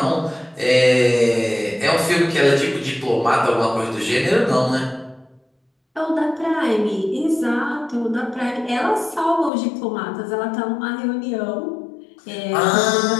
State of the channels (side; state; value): right; drops out; at 9.5 s